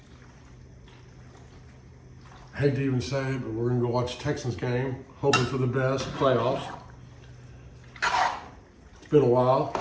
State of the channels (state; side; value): identical; both; correlation 1.00